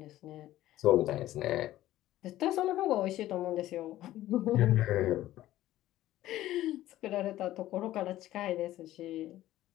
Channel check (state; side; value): quieter; right; 14.6 dB